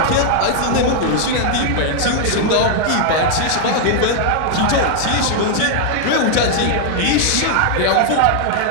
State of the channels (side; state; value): both; different; correlation 0.00